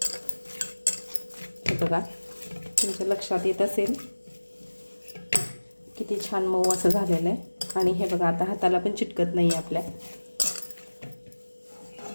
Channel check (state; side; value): inverted; both; correlation -1.00